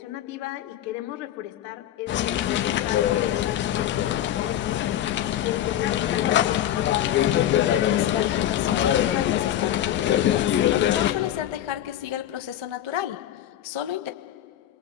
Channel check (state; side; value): quieter; right; 11.7 dB